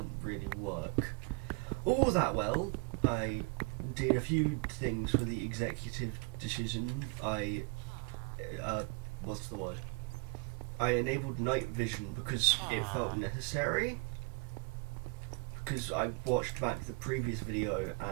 really work all that well. I did a few things for the executive decision. What's the word? I enabled night vision because it felt necessary. Because I watched back the previous video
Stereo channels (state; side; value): quieter; left; 31.6 dB